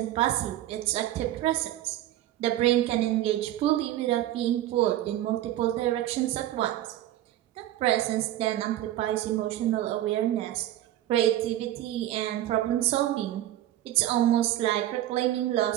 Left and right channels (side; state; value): left; quieter; 13.6 dB